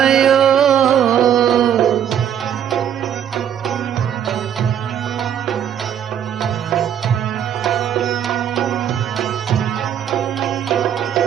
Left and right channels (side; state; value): left; quieter; 9.3 dB